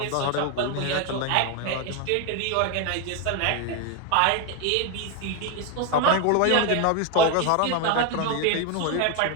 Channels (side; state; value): both; different; correlation 0.01